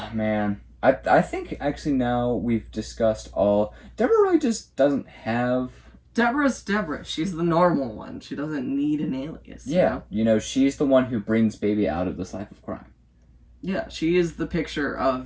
man. I think actually now we've discussed all. Deborah really just doesn't have. Deborah's Deborah. She's the normal one. She doesn't need an alias. Yeah, you know, she's the one who brings baby out of this life of crime. Yeah, she is the picture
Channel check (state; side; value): identical; both; correlation 1.00